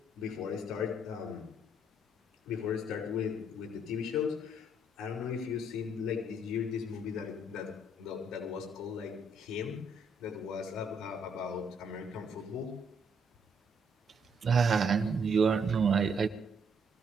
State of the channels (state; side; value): normal; both; correlation 0.70